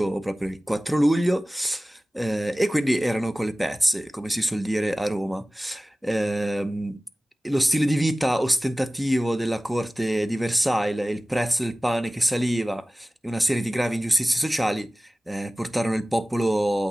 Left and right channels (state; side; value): normal; both; correlation 0.97